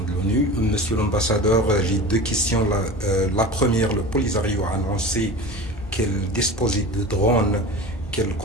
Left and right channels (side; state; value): both; normal; correlation 0.33